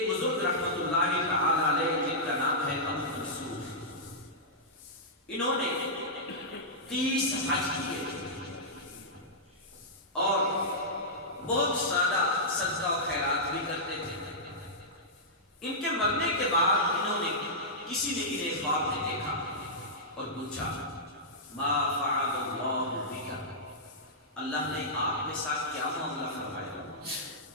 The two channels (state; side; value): normal; both; correlation -0.12